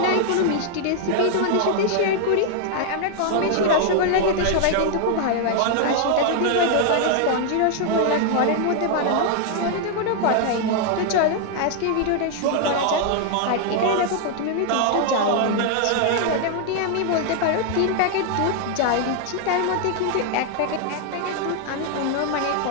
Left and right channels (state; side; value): different; both; correlation 0.00